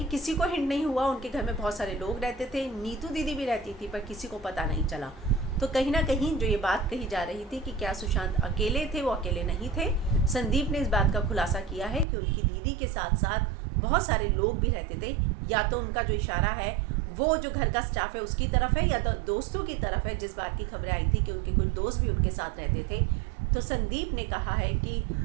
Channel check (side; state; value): left; drops out; at 12.1 s